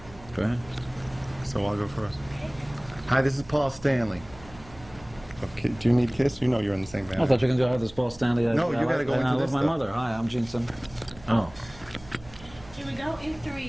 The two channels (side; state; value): right; noise; hum, 20 dB below the sound